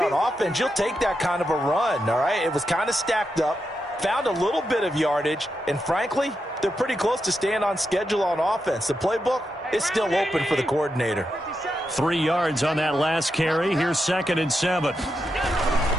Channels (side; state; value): both; normal; correlation 0.86